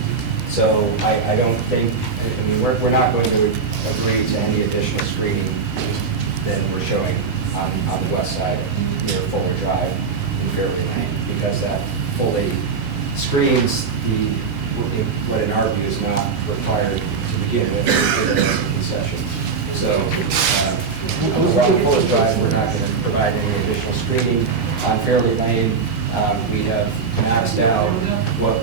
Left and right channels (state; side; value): quieter; left; 5.2 dB